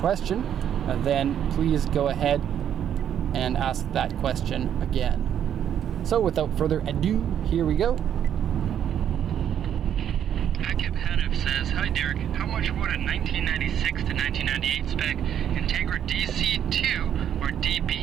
then please go ahead and ask that question again. So without further ado, here we go. Akib Hanif says, "Hi Derek, how much would a 1996 to 1998 spec Integra DC2 or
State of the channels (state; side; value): quieter; left; 9.6 dB